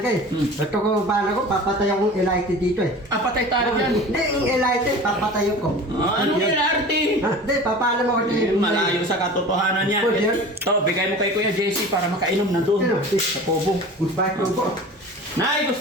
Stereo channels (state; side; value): normal; both; correlation 0.38